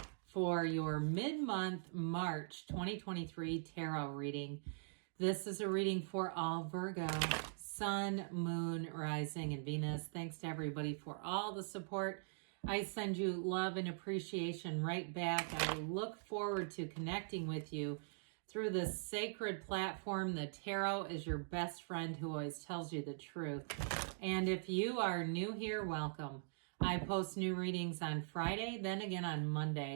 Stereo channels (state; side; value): silent; left; digital silence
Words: for your mid-month March 2023 tarot reading. This is a reading for all Virgo, Sun, Moon, Rising, and Venus. Thanks to everybody for all the support. I send you love and appreciation right back. I look forward to connecting with you through this sacred platform. The tarot is your best friend who always tells you the truth. And if you are new here, welcome. I post new readings on Friday, then again on